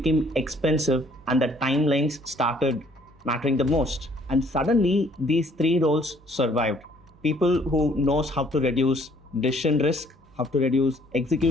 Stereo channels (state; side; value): normal; both; correlation 0.61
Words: expensive, and the timelines started mattering the most. And suddenly these three roles survived: people who knows how to reduce decision risk, how to reduce